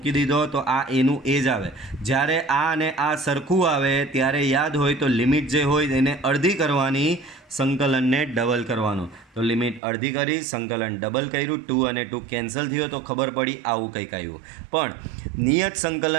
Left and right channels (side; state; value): left; drops out; at 9.8 s